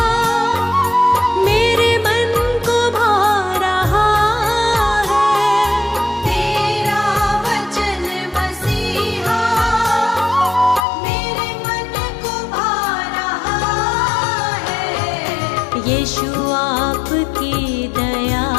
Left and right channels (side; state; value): right; drops out; at 10.9 s